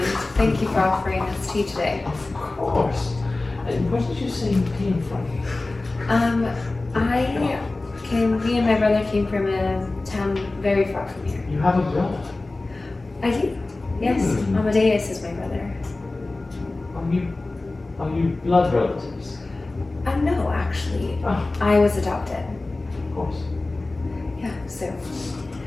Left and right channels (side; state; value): right; quieter; 3.1 dB